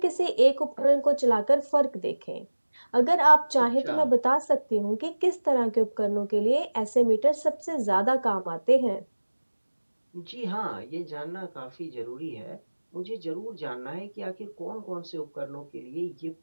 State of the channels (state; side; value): inverted; both; correlation -1.00